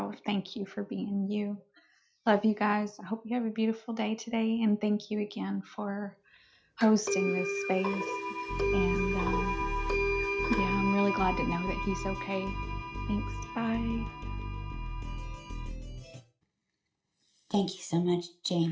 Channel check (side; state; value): both; identical; correlation 1.00